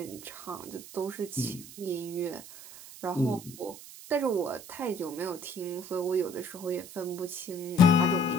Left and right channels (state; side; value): noise; right; hiss, 15 dB below the sound